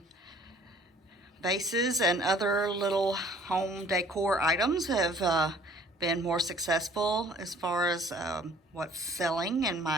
Vases and other little home decor items have been more successful as far as what's selling in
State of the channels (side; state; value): both; normal; correlation 0.55